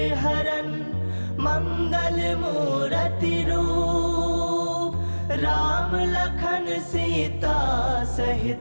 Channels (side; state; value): both; inverted; correlation -1.00